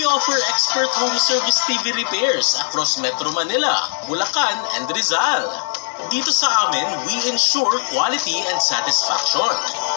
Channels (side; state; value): right; silent; digital silence